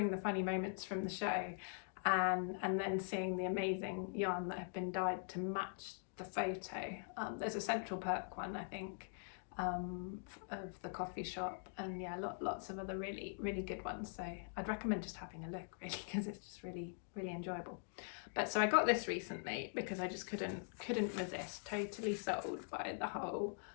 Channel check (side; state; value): right; silent; digital silence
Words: the funny moments from the show, and then seeing the amazing yarn that have been dyed to match the photo. There's a Central Perk one, I think, of the coffee shop, and yeah, lots of other really good ones. So I'd recommend just having a look, really, because it's just really enjoyable. But so I got this recently because I just couldn't resist. Totally sold by the whole